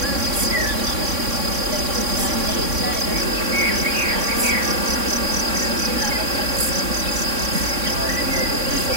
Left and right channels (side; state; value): left; late; 3.6 ms